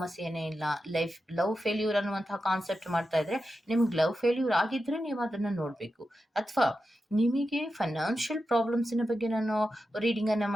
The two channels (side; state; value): both; normal; correlation 0.90